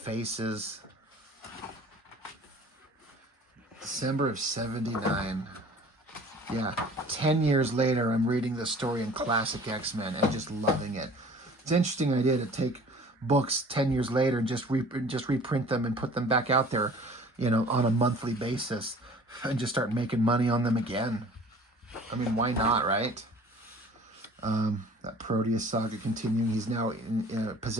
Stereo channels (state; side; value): normal; both; correlation 0.48